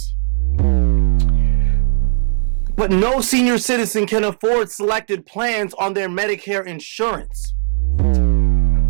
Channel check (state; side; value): silent; left; digital silence